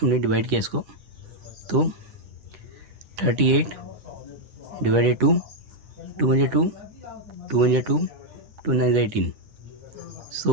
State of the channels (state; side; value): late; left; 9.2 ms